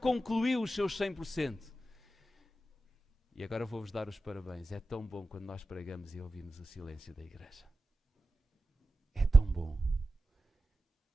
os seus 100%. E agora vou-vos dar os parabéns. É tão bom quando nós pregamos e ouvimos o silêncio da igreja. É tão bom.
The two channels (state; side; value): normal; both; correlation 0.93